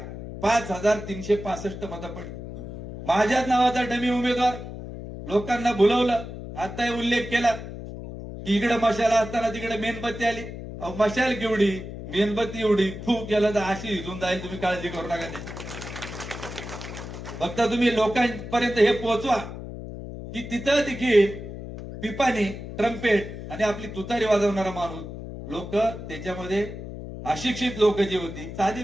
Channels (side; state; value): left; noise; hum, 10 dB below the sound